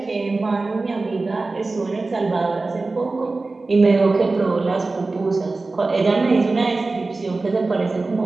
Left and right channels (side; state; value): left; quieter; 3.5 dB